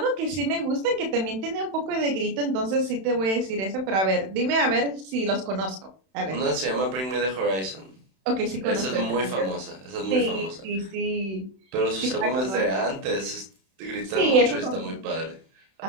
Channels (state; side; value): late; left; 31 ms